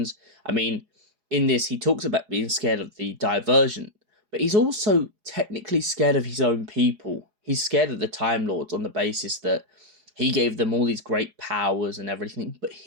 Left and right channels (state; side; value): late; left; 4.8 ms